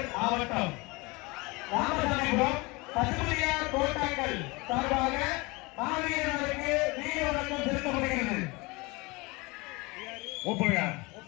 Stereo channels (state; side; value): quieter; right; 25.1 dB